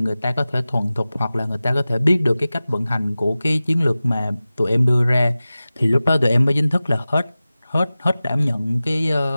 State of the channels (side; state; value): both; inverted; correlation -0.96